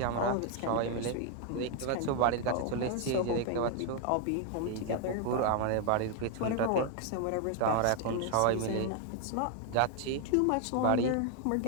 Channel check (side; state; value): both; different; correlation 0.00